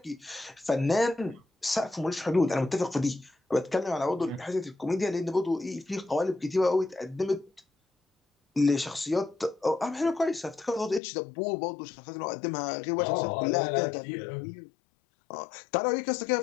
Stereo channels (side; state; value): right; drops out; at 11.0 s